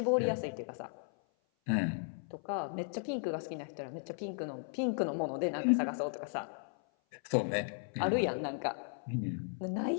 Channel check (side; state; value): right; silent; 54 dB below the other